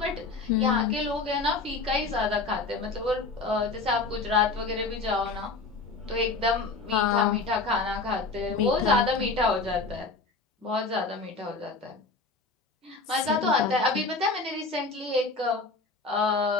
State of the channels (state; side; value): quieter; right; 3.8 dB